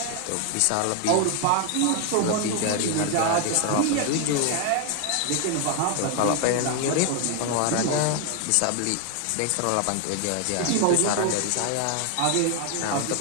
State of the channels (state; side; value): different; both; correlation 0.01